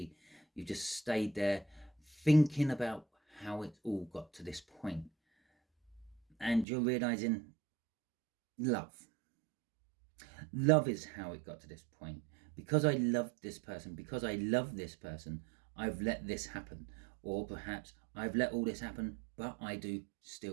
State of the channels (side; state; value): left; drops out; at 6.7 s